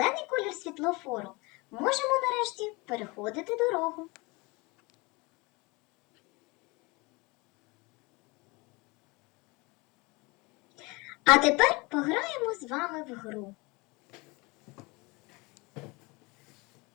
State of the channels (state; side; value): quieter; right; 25.9 dB